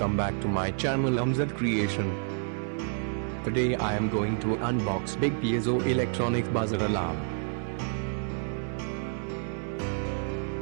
back to my channel Amzad Creation. Today I am going to unbox big Piezo electronic buzzer alarm.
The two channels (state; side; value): silent; left; 58 dB below the other